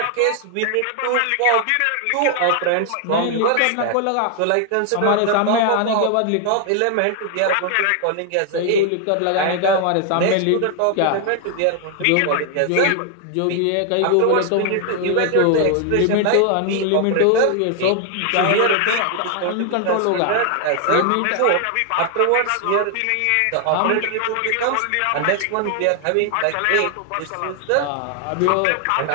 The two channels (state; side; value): different; both; correlation 0.00